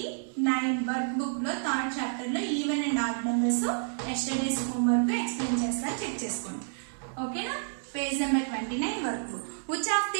work book లో థర్డ్ చాప్టర్ లో even and odd numbers yesterday's homework explain చేస్తాను, చెక్ చేసుకోండి. ఓకేనా, page number 29 work book. Which of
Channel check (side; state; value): left; silent; digital silence